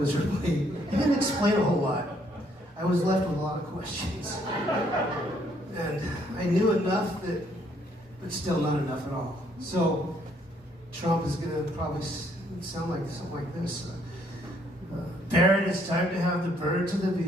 He didn't explain a whole lot. I was left with a lot of questions. And I knew enough but still not enough at all. So Trump is going to probably sound like something like this. Barrett, it's time to have the birds and the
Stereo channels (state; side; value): normal; both; correlation 0.68